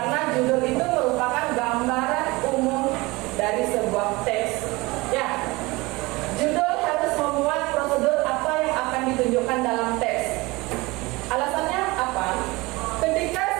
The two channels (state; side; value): quieter; left; 22.8 dB